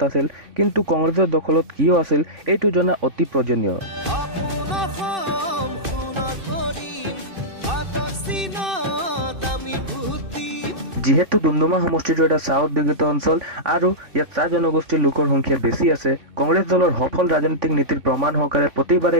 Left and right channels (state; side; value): late; left; 2.6 ms